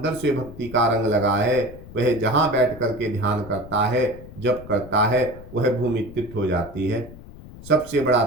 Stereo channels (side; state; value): left; noise; rumble, 16 dB below the sound